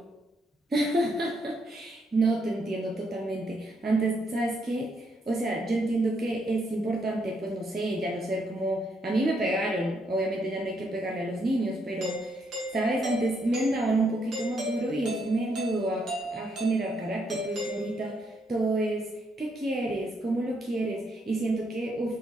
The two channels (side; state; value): both; normal; correlation 0.75